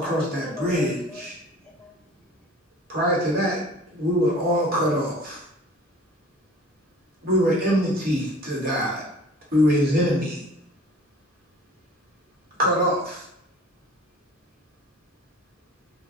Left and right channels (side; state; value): both; normal; correlation 0.46